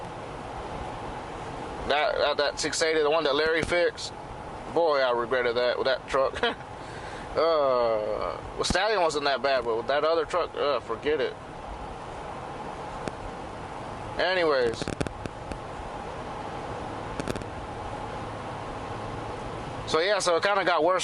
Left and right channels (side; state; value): both; identical; correlation 1.00